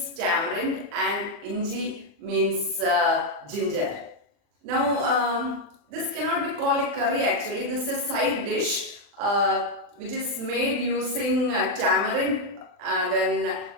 tamarind and Inji means ginger. Now, this cannot be called a curry actually. This is a side dish which is made using tamarind, then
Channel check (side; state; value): left; late; 40 ms